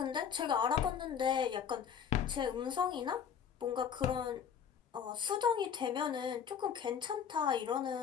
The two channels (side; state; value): right; quieter; 7.7 dB